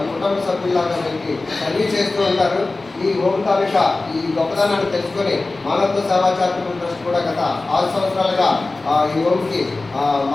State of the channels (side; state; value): right; quieter; 3.3 dB